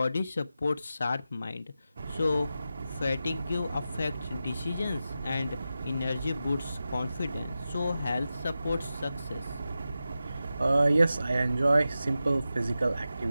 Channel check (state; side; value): inverted; both; correlation -0.92